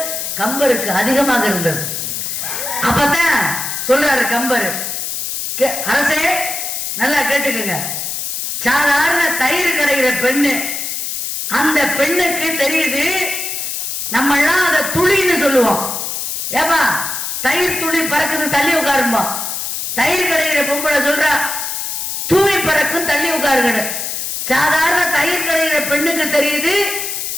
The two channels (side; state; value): left; noise; hiss, 4 dB below the sound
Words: கம்பருக்கு அதிகமாக இருந்தது. அப்பதான் சொல்றாரு கம்பர், அரசே நல்லா கேட்டுக்குங்க, சாதாரண தயிர் கிடைக்கிற பெண்ணு, அந்த பெண்ணுக்கு தெரியுது நம்ம எல்லாம் அதை துளின்னு சொல்லுவோம். ஏப்பா தயிர் துளி பறக்குது தள்ளி உட்காருமா. தயிர் கிடைக்கிற பொம்பளை சொல்றா தூவி பறக்கும் தள்ளி உட்காருங்க. சாதாரண தயிர் கிடைக்கிற பெண்ணுக்கு தெரியுது